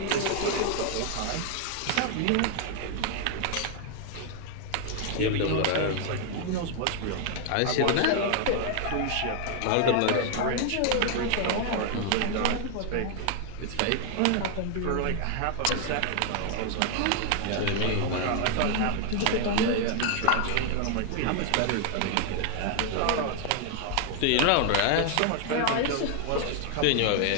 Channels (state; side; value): different; both; correlation 0.00